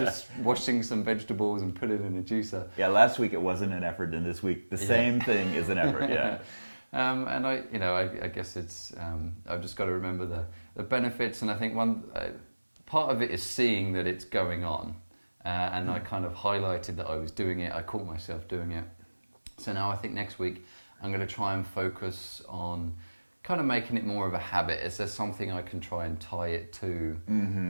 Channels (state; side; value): inverted; both; correlation -1.00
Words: washing some vegetables and put it in a juicer. Yeah, last week it wasn't an effort, and this week the same thing is an effort. Yeah. And I guess it's I've just got to remember the benefits, and I think one part of it is seeing that it's going on. And I kind of highlighted that I was doing it. I caught myself doing it. So now I think next week I'm going to try and focus on kind of making it more of a habit. Is there something I can try and tie it to?